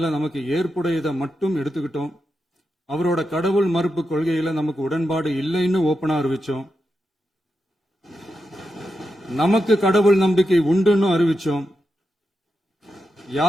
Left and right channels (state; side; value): normal; both; correlation 0.87